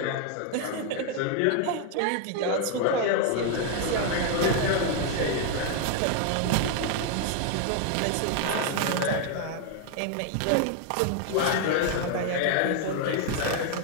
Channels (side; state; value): both; different; correlation 0.00